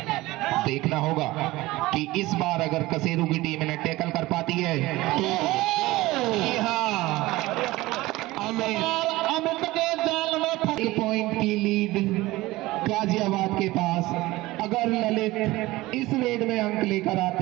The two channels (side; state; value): left; quieter; 19.0 dB